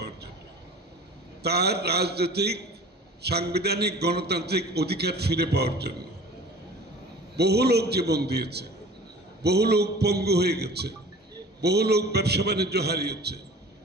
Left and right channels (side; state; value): both; normal; correlation 0.43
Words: জন্য, তার রাজনৈতিক, সাংবিধানিক, গণতান্ত্রিক অধিকার ফিরে পাওয়ার জন্য। বহু লোক জীবন দিয়েছে, বহু লোক পঙ্গু হয়ে গেছে, বহু লোক ব্যবসা বাণিজ্য হারিয়েছে,